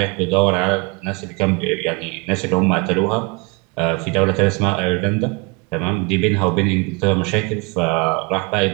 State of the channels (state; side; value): quieter; left; 28.1 dB